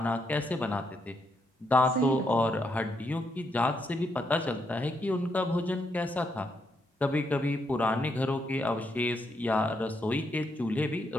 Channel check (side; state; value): both; normal; correlation 0.79